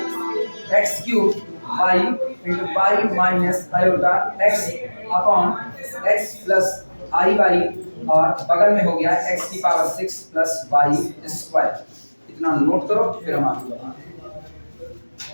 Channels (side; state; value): both; inverted; correlation -1.00